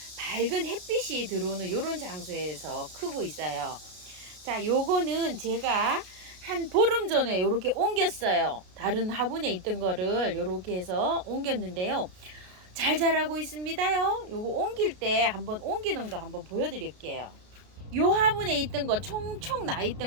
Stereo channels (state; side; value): late; left; 33 ms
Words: 밝은 햇빛이 들어오는 이런 장소에서 크고 있어요. 자, 요거는 제가 한 보름 전에 요렇게 옮겼어요. 다른 화분에 있던 거를 요렇게 해서 옮겼는데요. 잘 자라고 있습니다요. 요거 옮길 때 한번 옮기는 거 한번 보여드릴게요. 요 화분에 있던 거 총총 나